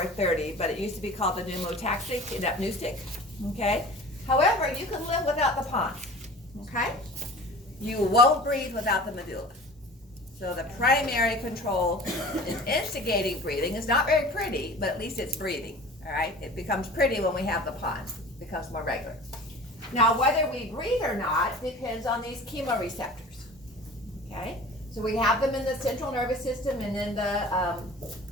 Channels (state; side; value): normal; both; correlation 0.41